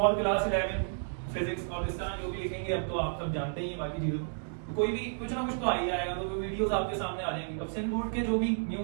class 11 physics, और इस तरह जो भी लिखेंगे अब तो आप सब जानते ही बाकी चीजों को, कोई भी कुछ ना कुछ तो आ ही जाएगा। तो वीडियोस आपके सामने आ जाएंगी। अब सेंट बोर्ड के जो भी न्यू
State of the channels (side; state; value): left; silent; digital silence